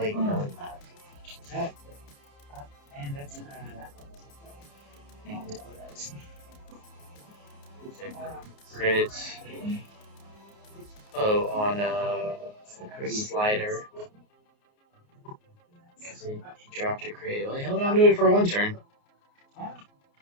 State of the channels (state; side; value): late; right; 30 ms